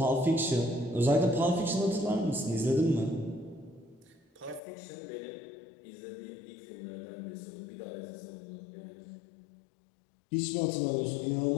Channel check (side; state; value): right; drops out; at 4.6 s